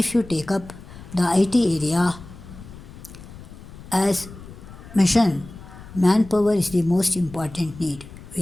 you take up the IT area as mission, manpower is the most important need. We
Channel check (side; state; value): left; noise; rumble, 16 dB below the sound